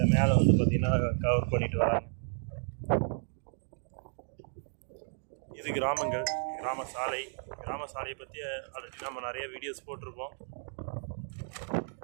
மேலே வந்து பார்த்திங்கன்னா கவர் பண்ணிட்டு வராங்க. இது கிராமங்கள், கிராம சாலையை பற்றி ஆல்ரெடி நம்ம நிறைய வீடியோஸ் போட்டிருப்போம்.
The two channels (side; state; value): left; silent; digital silence